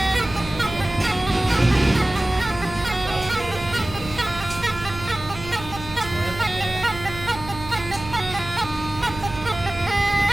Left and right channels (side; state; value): right; noise; hum, 12 dB below the sound